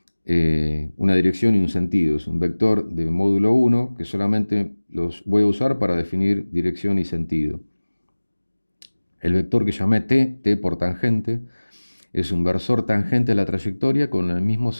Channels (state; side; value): inverted; both; correlation -1.00